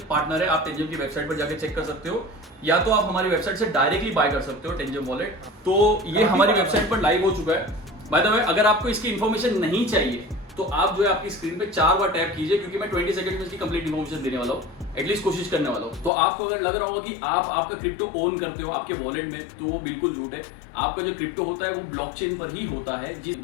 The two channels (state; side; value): drops out; right; at 16.1 s